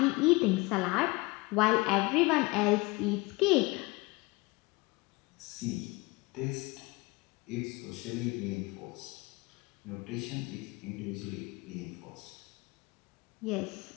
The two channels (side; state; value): right; quieter; 24.5 dB